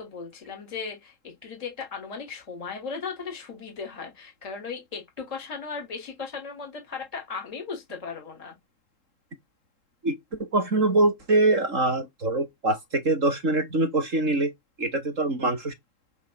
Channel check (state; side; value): late; left; 3.7 ms